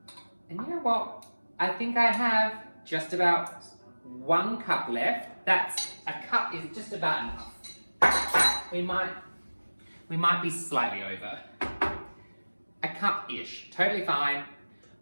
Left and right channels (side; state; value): both; inverted; correlation -1.00